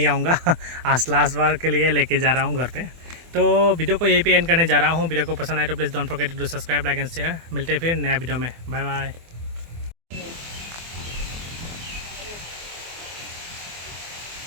आऊँगा आज लास्ट बार के लिए लेके जा रहा हूँ घर पे। तो वीडियो को यहीं पे एंड करने जा रहा हूँ। वीडियो को पसंद आए तो please don't forget to subscribe, like and share. मिलते हैं फिर नया वीडियो में। Bye bye.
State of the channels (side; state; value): left; late; 24 ms